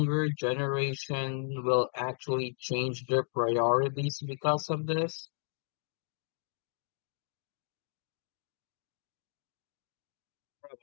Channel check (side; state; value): right; silent; digital silence